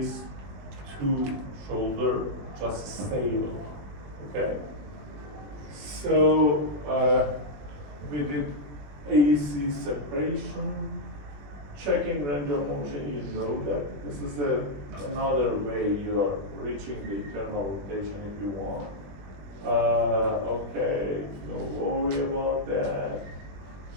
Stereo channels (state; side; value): late; left; 20 ms